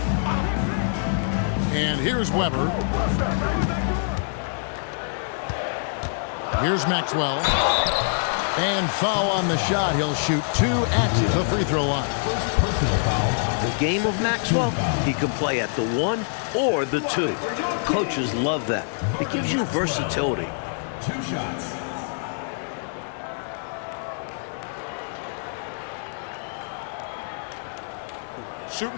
And here's Weber. Here's Maxwell. And foul on the shot. He'll shoot 2 at the free throw line. The game of Maxwell, he can play at the 1 or the 2. Coaches love that. It gives you versatility. 2 shots.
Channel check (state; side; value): silent; right; digital silence